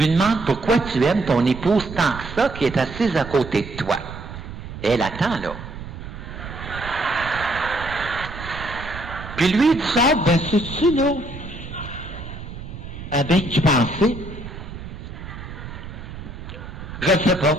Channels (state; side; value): noise; right; rumble, 11 dB below the sound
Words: demande pourquoi tu aimes ton épouse tant que ça qui est assise à côté de toi. Et elle attend là. Puis lui, il sort, ben c'est-tu là? Ah ben, tu pensais? Je ne sais pas.